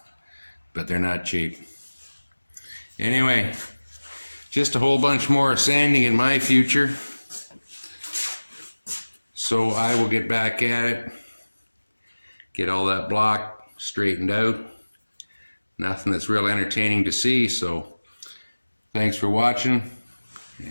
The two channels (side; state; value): both; inverted; correlation -1.00